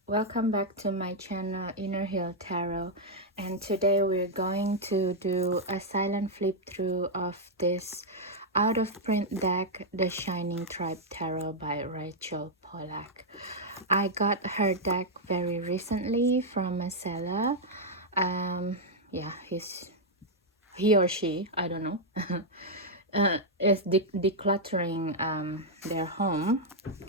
welcome back to my channel Inner Hill Tarot, and today we're going to do a silent flip through of this out of print deck, The Shining Tribe Tarot by Rachel Pollack. I got her deck very recently from a seller. Yeah, he or she, I don't know, is decluttering their home.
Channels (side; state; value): both; normal; correlation -0.03